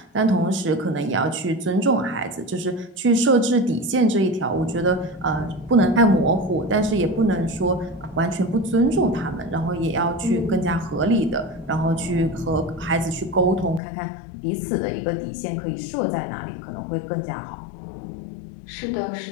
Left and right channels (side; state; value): right; drops out; at 13.8 s